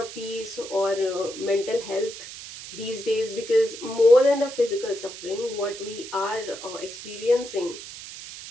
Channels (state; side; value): noise; right; hiss, 12 dB below the sound